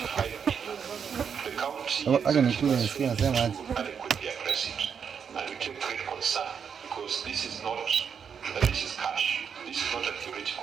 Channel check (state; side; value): quieter; left; 7.0 dB